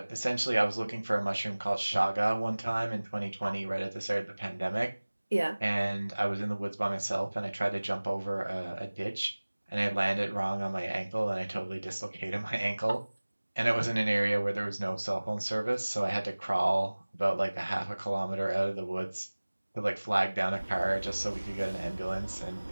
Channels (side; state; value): both; inverted; correlation -1.00